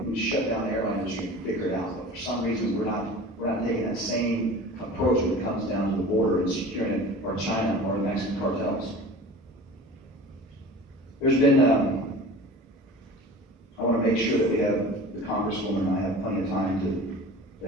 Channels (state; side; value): normal; both; correlation 0.39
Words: shut down the airline industry and figure it out. But for some reason, we're not taking that same approach when it comes down to the border and securing it, or China, or the Mexican cartels. There's been, I want to make sure that we have the Congresswoman and I have plenty of time